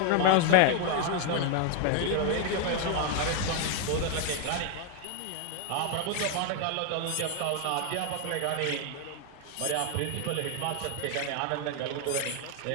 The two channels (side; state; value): both; different; correlation 0.00